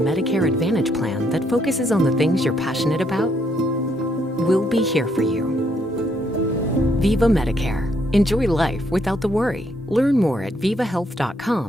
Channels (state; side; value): normal; both; correlation 0.73